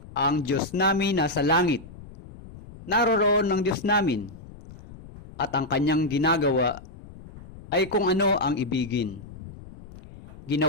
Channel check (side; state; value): left; noise; rumble, 18 dB below the sound